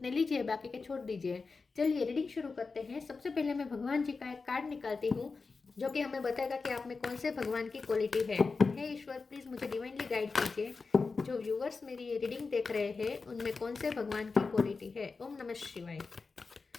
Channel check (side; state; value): right; quieter; 4.4 dB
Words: लीजिए, बाकी के छोड़ दीजिए। चलिए रीडिंग शुरू करते हैं। सबसे पहले मैं भगवान जी का एक कार्ड निकालती हूँ जो कि हमें बताएगा कि आप में कौन से भगवान की क्वालिटी है। हे ईश्वर, प्लीज मुझे डिवाइनली गाइड कीजिए। जो व्यूअर्स मेरी ये रीडिंग देख रहे हैं उनमें कौन से भगवान की क्वालिटी है। ओम नमः शिवाय।